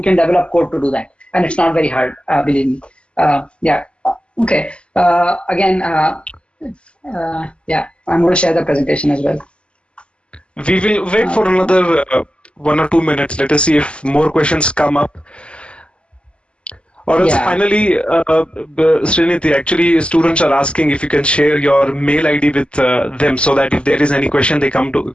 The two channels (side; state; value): right; late; 0.054 ms